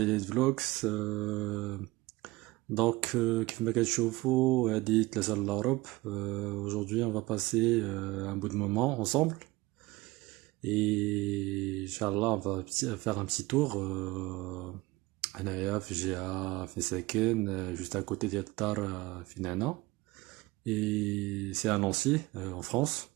فلوكس. كيف ما كتشوفوا هذه ثلاثة للأوروب. Aujourd'hui on va passer un bout de moment ensemble et Inch'Allah on va faire un petit tour هنايا في جهة في ساكن juste à côté ديال الدار فين أنا et c'est à Nancy en France.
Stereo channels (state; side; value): quieter; left; 20.5 dB